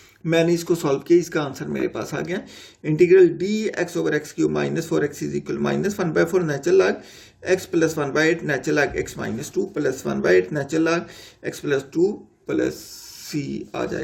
मैंने इसको सॉल्व किया, इसका आंसर मेरे पास आ गया। Integral dx/x³ -4x = -1/4 natural log x + 1/8 natural log x -2 + 1/8 natural log x + 2 + c आ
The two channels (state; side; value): identical; both; correlation 1.00